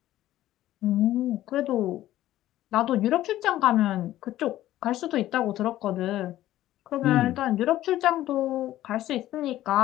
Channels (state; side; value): quieter; right; 14.2 dB